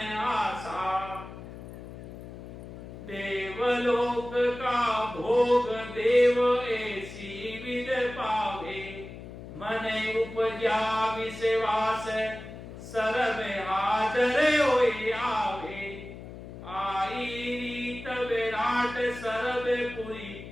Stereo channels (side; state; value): left; noise; hum, 13 dB below the sound